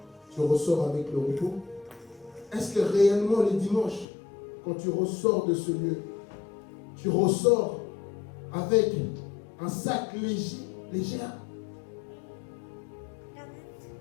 tu ressors avec le repos? Est-ce que réellement les dimanches, quand tu ressors de ce lieu, tu ressors avec un sac léger?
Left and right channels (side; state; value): right; drops out; at 4.0 s